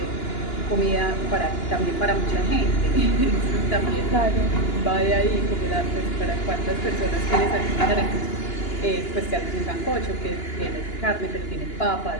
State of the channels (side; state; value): right; late; 2.9 ms